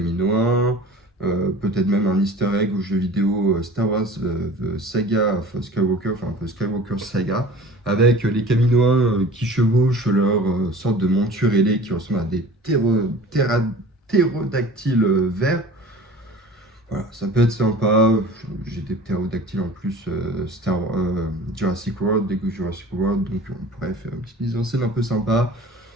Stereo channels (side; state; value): both; normal; correlation 0.42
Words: peut-être même un easter egg au jeu vidéo Star Wars The Saga of Skywalker, enfin un peu Skywalker Saga, avec les Caminoins qui chevauchent leur sorte de monture ailée qui ressemble à des ptérodactyles verts. Voilà, ça peut être sympa. J'ai des ptérodactyles en plus, Jurassic World, Lego Jurassic World, donc on pourrait faire une petite mise en scène un peu sympa.